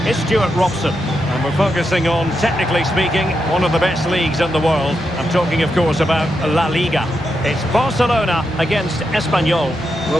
is Stuart Robson. And we're focusing on, technically speaking, one of the best leagues in the world. I'm talking, of course, about La Liga. It's Barcelona against Espanyol.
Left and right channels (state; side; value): normal; both; correlation 0.85